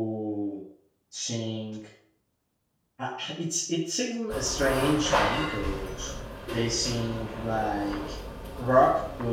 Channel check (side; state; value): both; identical; correlation 1.00